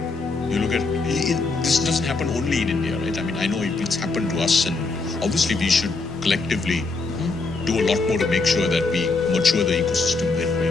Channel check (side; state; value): right; quieter; 3.8 dB